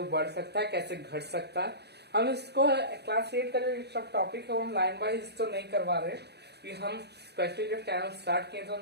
बढ़ सकता है, कैसे घट सकता है। हम इसको क्लास 8 का जो सब टॉपिक है वो हम लाइन वाइज तो नहीं करवा रहे कि हम स्पेशली जब चैनल स्टार्ट किए तो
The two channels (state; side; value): late; left; 0.48 ms